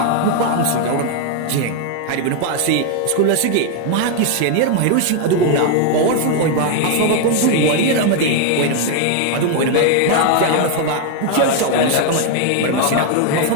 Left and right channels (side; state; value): both; different; correlation 0.00